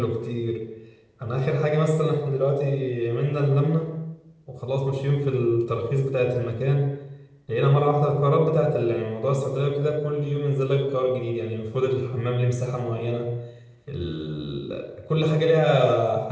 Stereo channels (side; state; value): both; identical; correlation 1.00